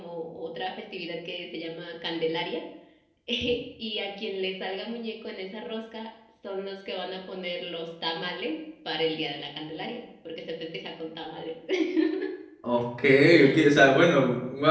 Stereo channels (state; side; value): identical; both; correlation 1.00